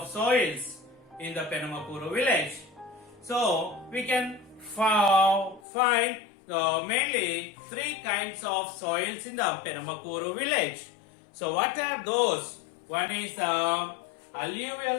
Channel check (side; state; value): right; drops out; at 5.6 s